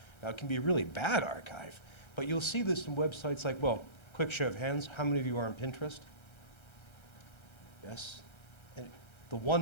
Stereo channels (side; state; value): right; late; 1.3 ms